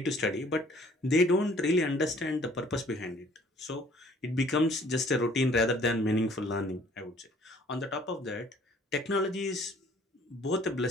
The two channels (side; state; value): both; normal; correlation 0.57